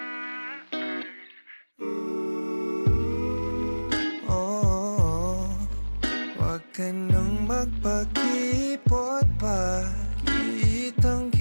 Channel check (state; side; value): inverted; both; correlation -1.00